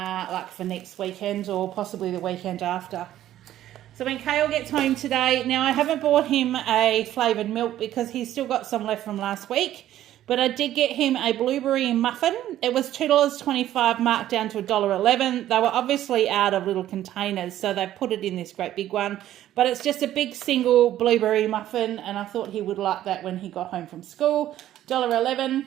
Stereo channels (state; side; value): quieter; left; 12.7 dB